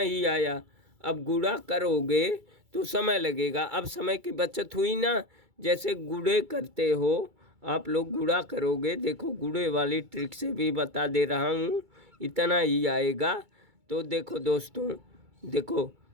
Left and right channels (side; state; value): left; late; 2.3 ms